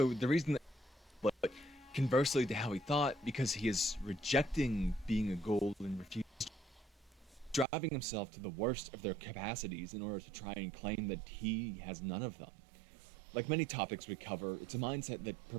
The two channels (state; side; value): drops out; left; at 7.7 s